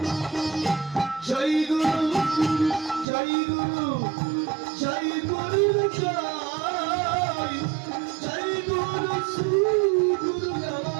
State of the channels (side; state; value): left; drops out; at 3.1 s